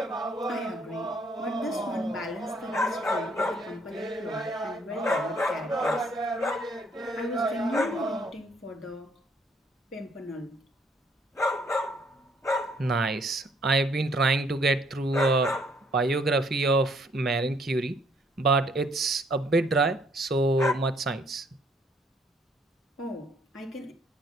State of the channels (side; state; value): both; normal; correlation 0.66